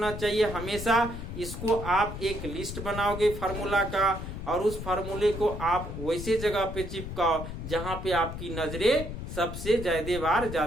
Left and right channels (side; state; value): left; noise; rumble, 7 dB below the sound